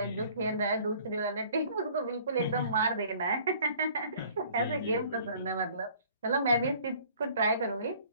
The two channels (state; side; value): inverted; both; correlation -0.53